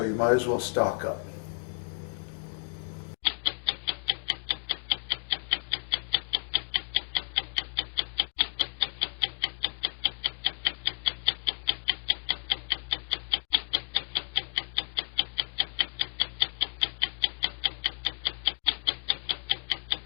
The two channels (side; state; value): right; silent; digital silence